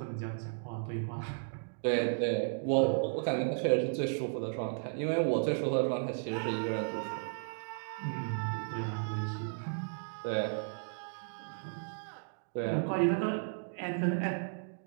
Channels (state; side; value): silent; left; digital silence